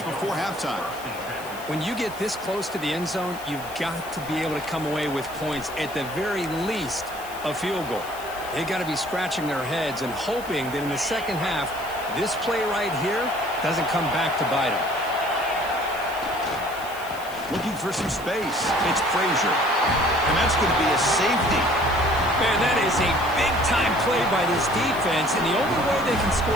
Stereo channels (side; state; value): left; noise; hiss, 17 dB below the sound